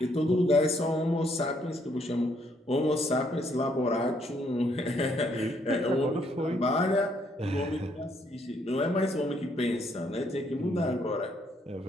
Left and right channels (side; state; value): both; normal; correlation 0.70